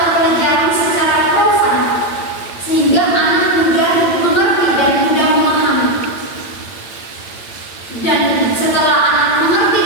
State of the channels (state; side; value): late; right; 8.8 ms